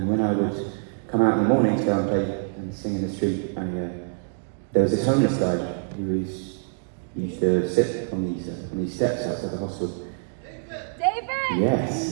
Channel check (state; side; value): silent; left; digital silence